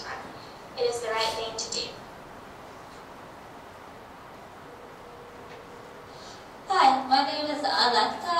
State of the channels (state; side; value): identical; both; correlation 1.00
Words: It is the right thing to do. Hi, my name is Alexa.